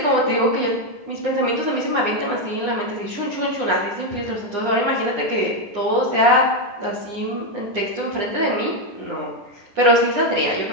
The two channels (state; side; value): late; left; 9.9 ms